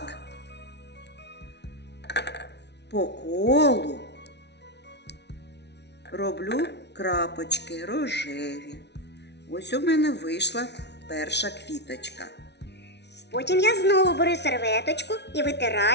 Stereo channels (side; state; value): right; late; 0.50 ms